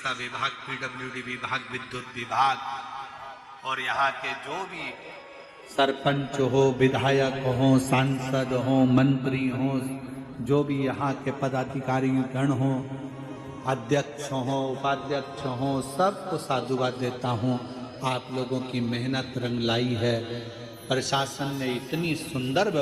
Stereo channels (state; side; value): identical; both; correlation 1.00